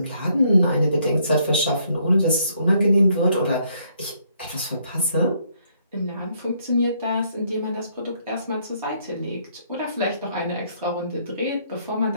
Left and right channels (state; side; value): inverted; both; correlation -0.69